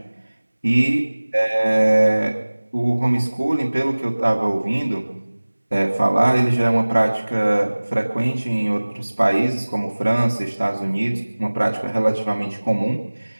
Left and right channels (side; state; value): both; inverted; correlation -1.00